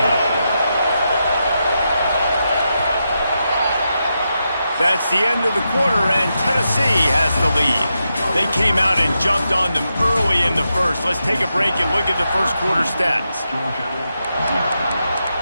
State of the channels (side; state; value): both; inverted; correlation -0.86